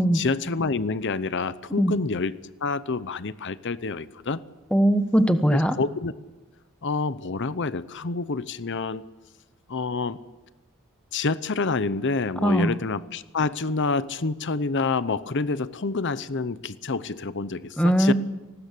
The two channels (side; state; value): both; normal; correlation 0.53